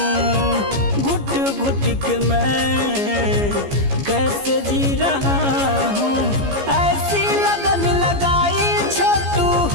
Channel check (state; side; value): late; left; 15 ms